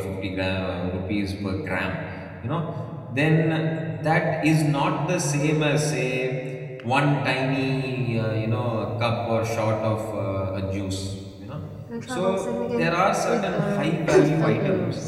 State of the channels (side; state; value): both; identical; correlation 1.00